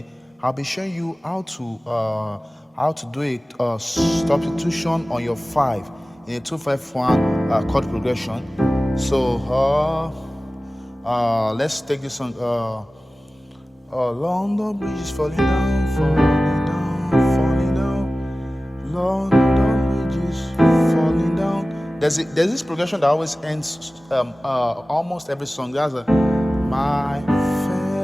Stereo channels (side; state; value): both; normal; correlation 0.97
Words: I'll be showing you how to do a substitution on your 5 in a 2-5-1 chord progression. So let's take this on. London Bridge is falling down, falling down, falling down. London Bridge is falling down. There's this progression that always ends almost every song. There's a my